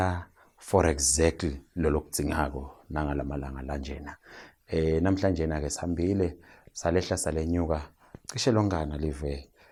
for exactly lolo kudzingako nangalamalanga lanjena. Namhlanje na ke sihambile salehla salenyuka cishe longana live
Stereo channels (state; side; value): identical; both; correlation 1.00